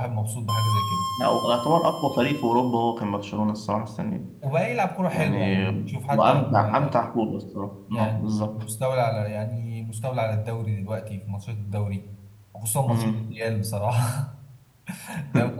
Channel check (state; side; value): identical; both; correlation 1.00